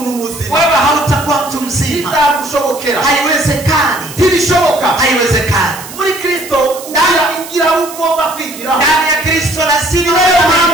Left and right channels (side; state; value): right; noise; hiss, 14 dB below the sound